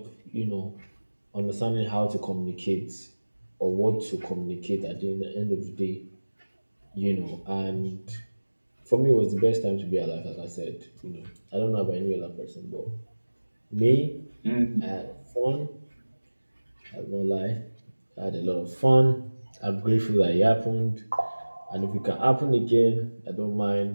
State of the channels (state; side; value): inverted; both; correlation -1.00